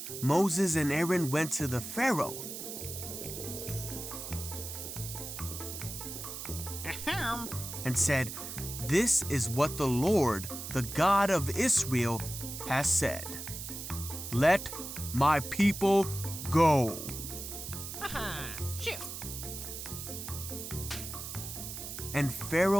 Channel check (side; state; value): right; noise; hiss, 8 dB below the sound